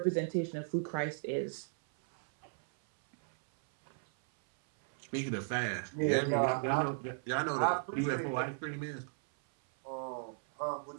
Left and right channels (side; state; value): left; silent; 54 dB below the other